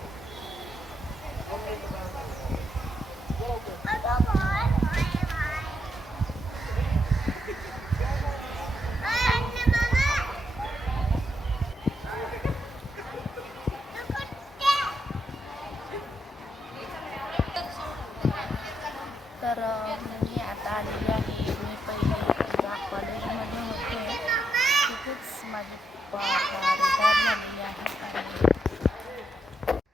तर मी आता आलेली आहे. मी पहिले ज्या कॉलेजमध्ये होते तिथेच माझी रिटायर झालेली आहे.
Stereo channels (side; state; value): both; normal; correlation 0.80